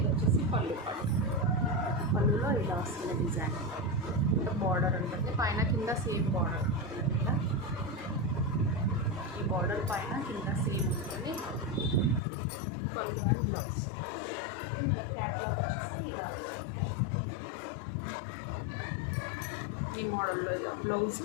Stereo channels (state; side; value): drops out; right; at 12.2 s